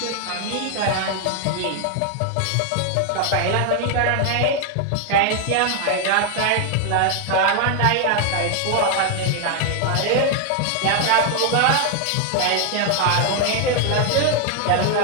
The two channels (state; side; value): different; both; correlation 0.00